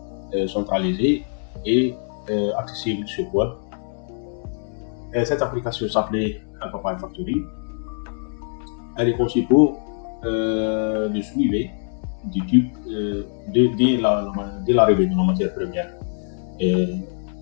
centralisée et accessible sur web. Cette application s'appelait Alphabet Factory. Elle est conçue pour le suivi du type dès l'arrivée de la matière première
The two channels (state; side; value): silent; right; 60 dB below the other